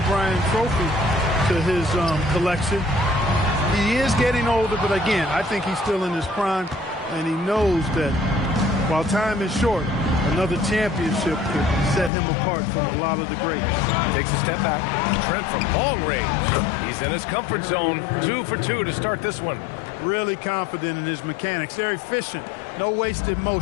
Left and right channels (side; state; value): right; drops out; at 12.1 s